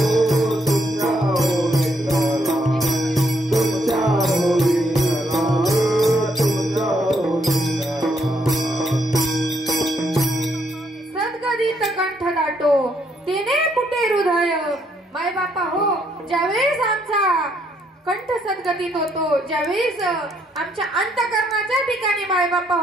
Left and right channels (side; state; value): both; normal; correlation 0.73